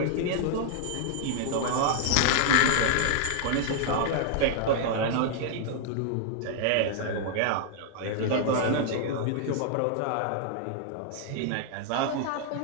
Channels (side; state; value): both; different; correlation -0.01